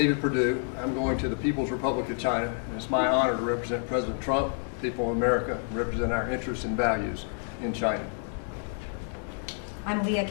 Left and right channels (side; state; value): right; silent; 59 dB below the other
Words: Perdue. I'm going to the People's Republic of China, and it's my honor to represent President Trump, people of America, and represent our interests and values in China. I'm Leah